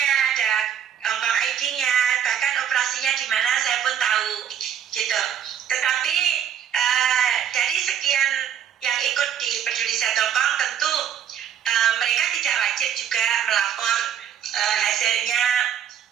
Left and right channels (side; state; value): left; quieter; 9.1 dB